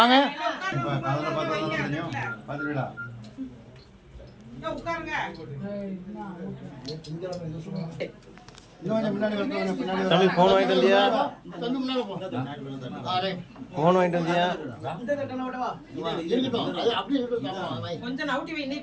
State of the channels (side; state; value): both; identical; correlation 1.00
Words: பார்த்துடா. தம்பி போன் வாங்கிட்டு வந்தியா? போன் வாங்கிட்டு வந்தியா? கொஞ்சம் நவுட்டி வை. நீ